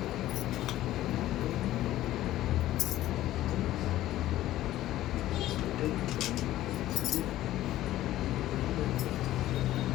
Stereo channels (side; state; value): right; quieter; 14.4 dB